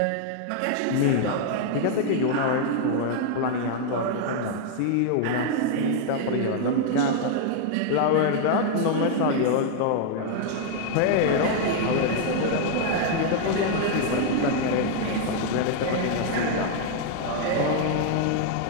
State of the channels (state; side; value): different; both; correlation 0.00